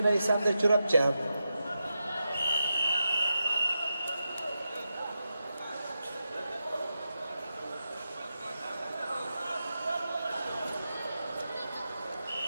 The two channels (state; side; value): inverted; both; correlation -0.89